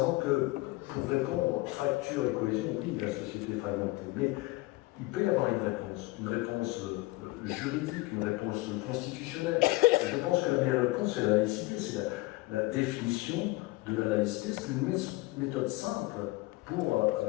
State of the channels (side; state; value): right; quieter; 21.1 dB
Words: que pour répondre fracture et cohésion, oui, la société est fragmentée, mais il peut y avoir une réponse juridique, une réponse constitutionnelle. Je pense que la meilleure réponse, c'est la laïcité, c'est la définition de la laïcité. C'est une méthode simple pour